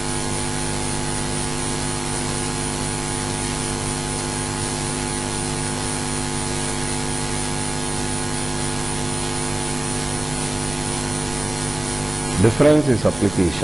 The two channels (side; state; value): right; noise; rumble, 12 dB below the sound